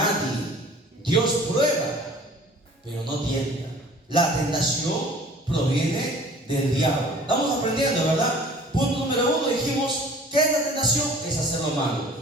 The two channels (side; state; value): both; normal; correlation 0.49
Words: Dios prueba, pero no tienta. La tentación proviene del diablo. Estamos aprendiendo, ¿verdad? Punto número 1, dijimos: ¿qué es la tentación? Es hacer lo